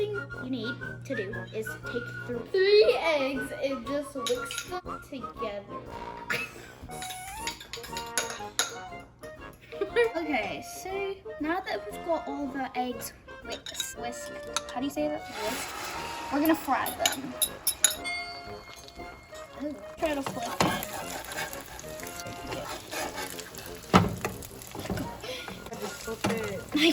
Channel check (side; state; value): both; identical; correlation 1.00